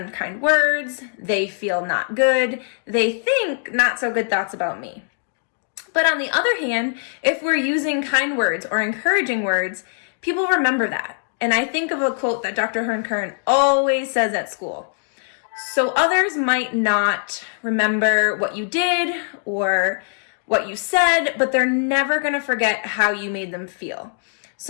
words, they feel not good, they think not so good thoughts about me. But on the other hand, if we're using kind words or encouraging words, people remember that. And I think of a quote that Dr. Hearn Kern always says at school. So others might not remember what you did or what you said, but they're never going to forget how you made them feel.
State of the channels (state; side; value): silent; right; digital silence